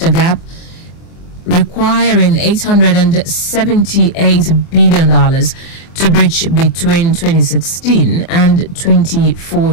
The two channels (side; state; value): right; late; 24 ms